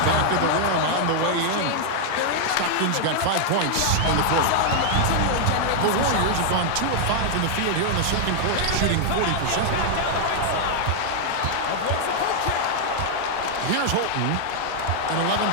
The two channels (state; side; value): different; both; correlation 0.00